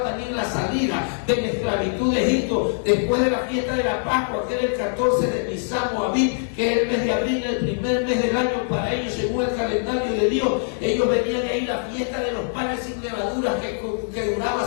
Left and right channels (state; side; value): silent; right; digital silence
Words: también la salida de la esclavitud de Egipto, después de la fiesta de la Pascua, que era el 14 de Nisan o Abib, que es el mes de abril, el primer mes del año para ellos según el calendario de Dios, ellos venían ahí la fiesta de los panes sin levadura que duraba